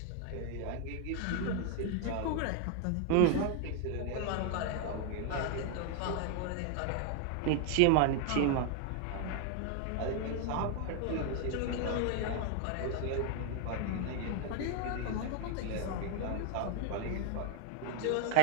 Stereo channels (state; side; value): different; both; correlation 0.00